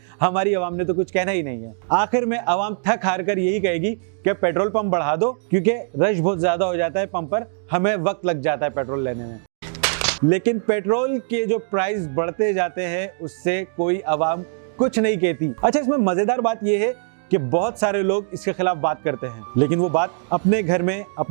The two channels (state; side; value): silent; left; digital silence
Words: हमारी आवाम ने तो कुछ कहना ही नहीं है। आखिर में आवाम थक हार कर यही कहेगी कि पेट्रोल पंप बढ़ा दो, क्योंकि रश बहुत ज्यादा हो जाता है पंप पर, हमें वक्त लग जाता है पेट्रोल लेने में। लेकिन पेट्रोल के जो प्राइस बढ़ते जाते हैं उससे कोई आवाम कुछ नहीं कहती। अच्छा, इसमें मजेदार बात यह है कि बहुत सारे लोग इसके खिलाफ बात करते हैं, लेकिन वो बात अपने घर में